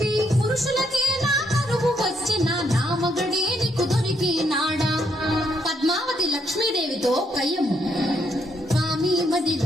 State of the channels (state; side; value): normal; both; correlation 0.75